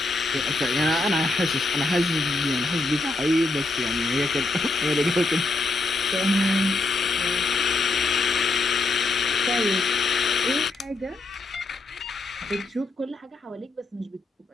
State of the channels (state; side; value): quieter; right; 3.3 dB